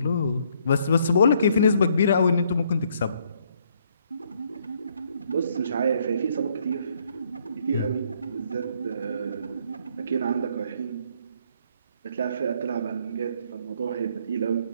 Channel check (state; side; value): inverted; both; correlation -0.68